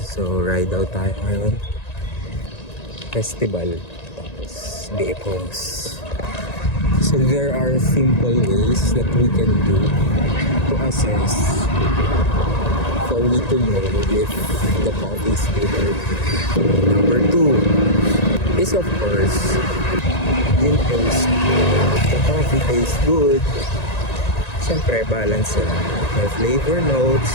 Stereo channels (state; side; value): late; right; 1.9 ms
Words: So ride out tayo ngayon. Festival. Tapos day phones. So there are simple ways that we can do to assess for we to know if the coffee is good or not. Number 2 is of course yung taste. The coffee tastes good. Siyempre balance yan. May flavor notes.